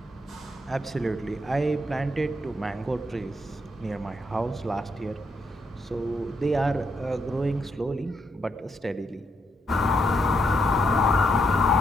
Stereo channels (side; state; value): both; normal; correlation 0.78